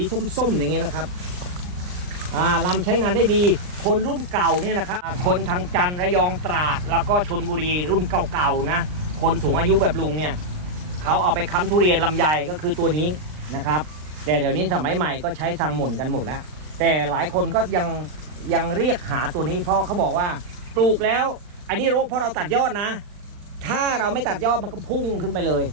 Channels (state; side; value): late; left; 39 ms